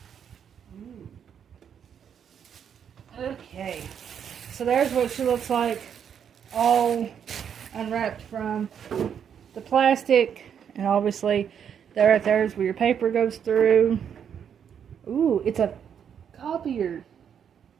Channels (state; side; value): quieter; left; 8.1 dB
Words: okay, so there's what she looks like, all unwrapped from the plastic, and obviously there right there is where your paper goes through. Ooh, it's a copier.